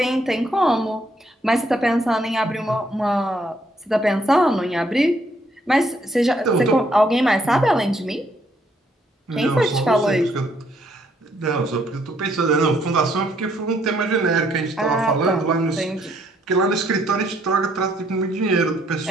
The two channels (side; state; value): both; normal; correlation 0.69